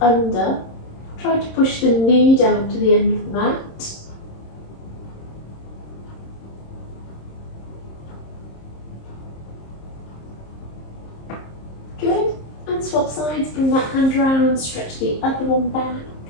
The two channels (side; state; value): right; late; 26 ms